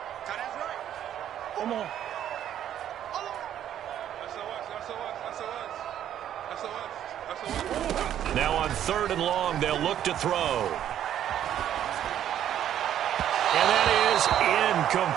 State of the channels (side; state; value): left; quieter; 10.7 dB